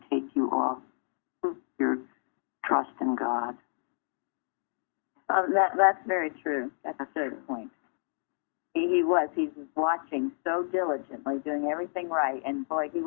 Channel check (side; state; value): right; silent; digital silence